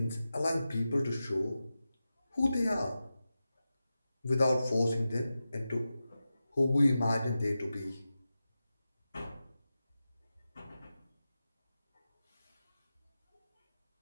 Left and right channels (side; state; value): both; inverted; correlation -0.93